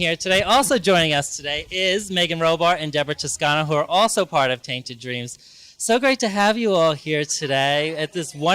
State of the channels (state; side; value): identical; both; correlation 1.00